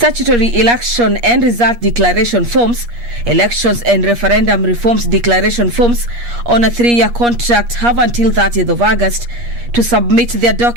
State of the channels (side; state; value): left; late; 8.4 ms